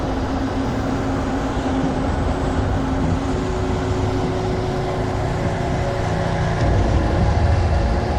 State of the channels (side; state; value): both; identical; correlation 1.00